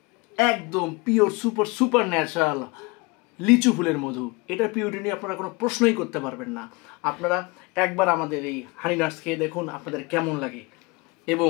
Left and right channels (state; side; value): quieter; right; 26.0 dB